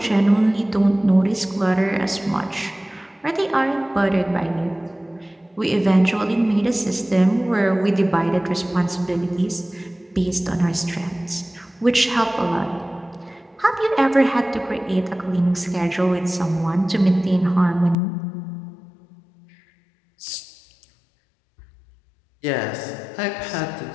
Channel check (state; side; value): drops out; right; at 17.9 s